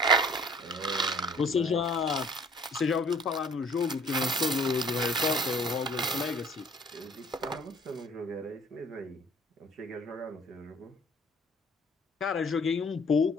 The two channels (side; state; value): both; normal; correlation 0.54